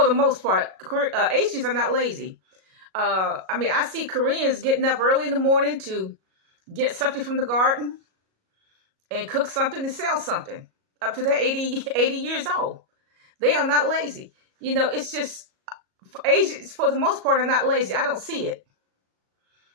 the most part, Asians are not lazy. I see Koreans getting up early in the morning to get something from the garden and cook something and sell something up to their 80 years old. They are not lazy. It's just Asians, for the most part, are not lazy. I don't see it.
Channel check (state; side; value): late; left; 37 ms